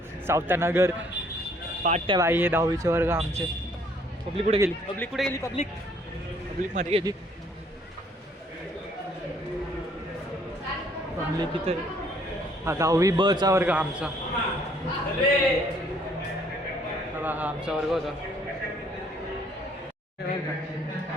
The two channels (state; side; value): normal; both; correlation 0.63